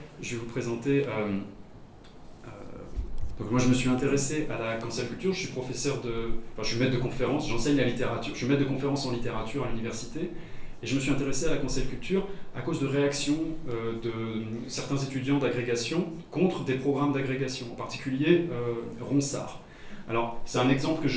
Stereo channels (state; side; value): identical; both; correlation 1.00